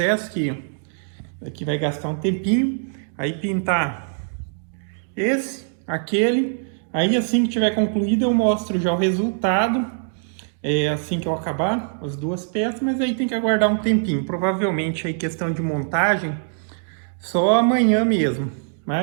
que aqui vai gastar um tempinho, aí pintar esse, aquele, aí assim que tiver concluído eu mostro já o resultado. Assim que eu acabar as duas peças, mas aí tem que aguardar um tempinho. Provavelmente aí questão de montagem só amanhã mesmo,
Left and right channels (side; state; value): left; silent; digital silence